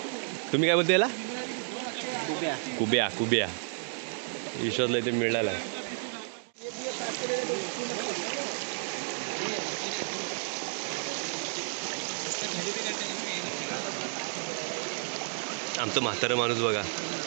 तुम्ही काय बोलता याला? कुब्या. कुब्या. विश्वासला इथे मिळाला आहे. आमचं म्हातारं माणूस बघा,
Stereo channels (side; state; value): left; silent; 57 dB below the other